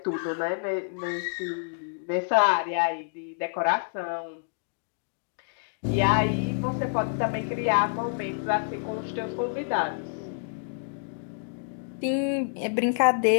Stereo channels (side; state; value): right; silent; digital silence